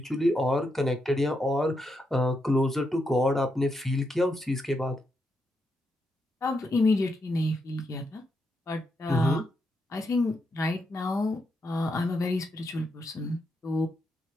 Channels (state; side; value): normal; both; correlation 0.82